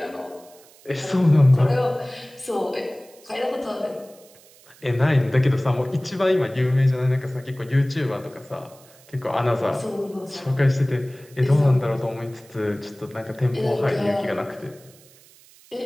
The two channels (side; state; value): right; noise; hiss, 26 dB below the sound